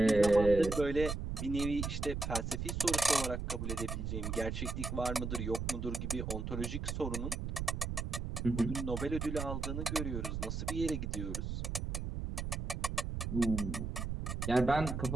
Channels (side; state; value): right; noise; rumble, 3 dB below the sound